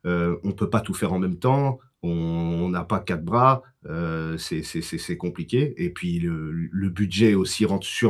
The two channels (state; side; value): identical; both; correlation 1.00